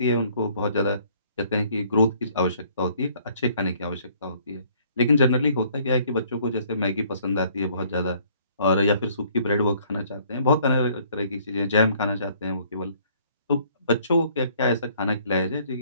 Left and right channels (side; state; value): both; inverted; correlation -0.61